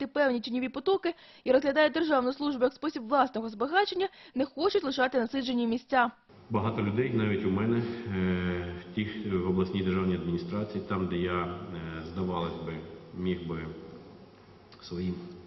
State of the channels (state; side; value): identical; both; correlation 1.00